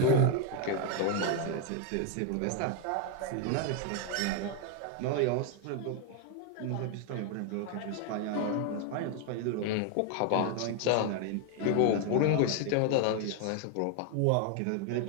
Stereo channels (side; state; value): both; different; correlation 0.01